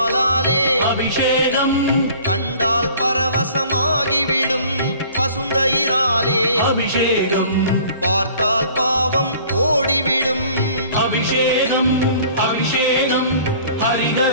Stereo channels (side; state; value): both; inverted; correlation -0.50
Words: அபிஷேகம் கண்டால் பரவசமாகிவிடும் பசுந்தயிராலே அபிஷேகம் பார்த்தால் பாவம் ஓடிவிடும் அபிஷேகம் அபிஷேகம்